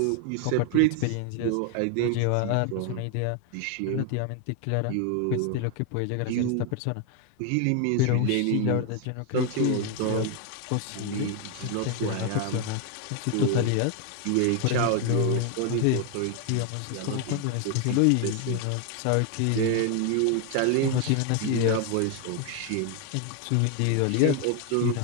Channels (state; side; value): different; both; correlation 0.01